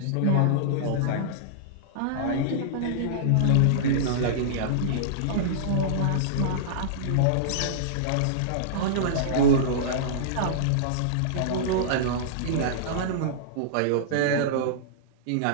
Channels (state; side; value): different; both; correlation -0.03